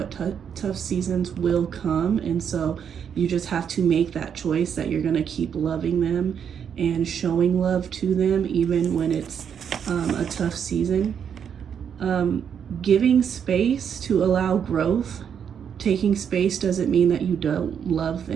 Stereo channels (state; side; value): quieter; left; 7.8 dB